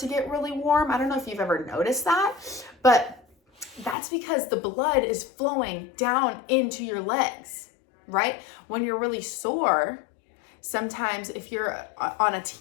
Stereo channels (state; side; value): drops out; right; at 4.0 s